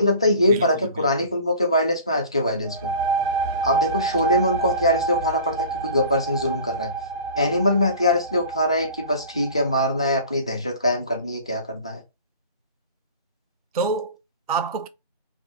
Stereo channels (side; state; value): both; inverted; correlation -0.41